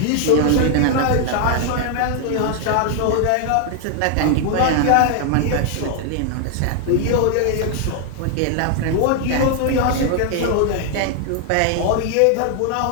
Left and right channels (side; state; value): both; different; correlation 0.00